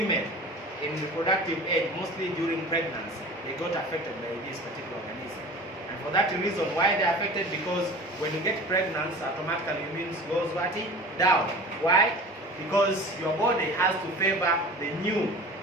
in reproductive age, mostly during pregnancy, they got affected by this particular organism. And for that reason, why they are affected? Because when you get pregnant, automatically immune goes down. Why? Because your body has to favor the new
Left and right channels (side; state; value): both; normal; correlation 0.39